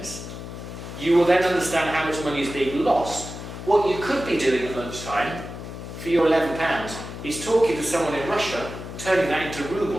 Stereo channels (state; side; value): noise; left; hum, 10 dB below the sound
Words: you will then understand how much money is being lost. What you could be doing at lunchtime for your £11 is talking to someone in Russia, turning that into